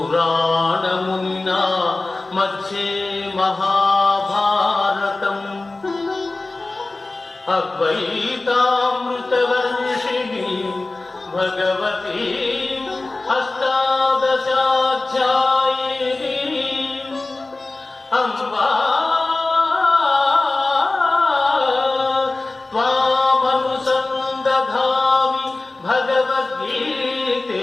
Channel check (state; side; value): quieter; right; 3.2 dB